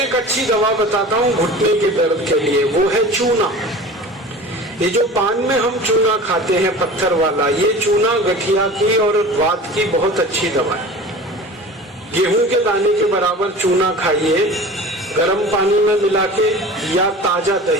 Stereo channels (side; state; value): both; normal; correlation 0.38